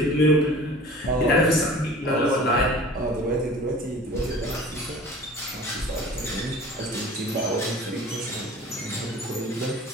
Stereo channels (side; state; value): both; normal; correlation 0.42